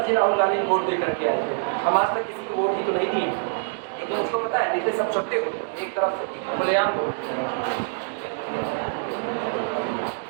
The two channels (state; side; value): silent; left; digital silence